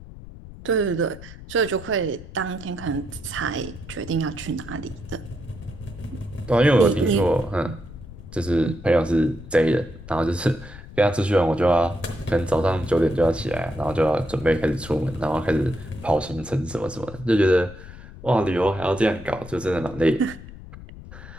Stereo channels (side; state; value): left; noise; rumble, 16 dB below the sound